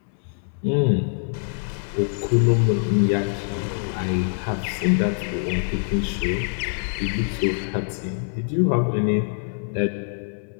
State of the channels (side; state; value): right; silent; 63 dB below the other